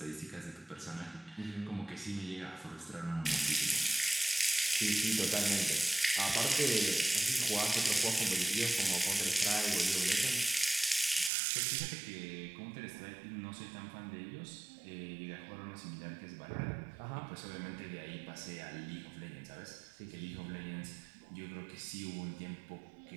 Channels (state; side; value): drops out; left; at 11.3 s